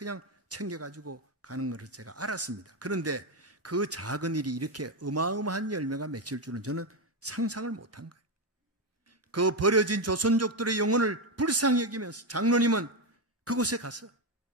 챙겨가지고 가는 것을 제가 알았습니다. 그런데 그 작은 일이 이렇게 어마어마한 열매가 맺힐 줄은 저는 상상을 못한 거예요. 그 버려진 조선족들의 영혼을 불쌍히 여기면서 장로님은 그곳에 가서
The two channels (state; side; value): normal; both; correlation 0.09